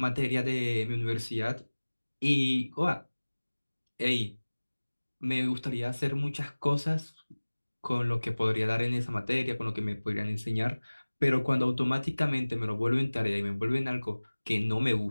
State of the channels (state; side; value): inverted; both; correlation -1.00